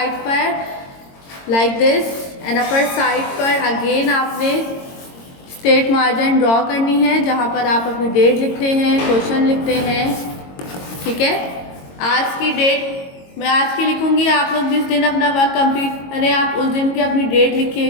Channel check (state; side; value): late; right; 22 ms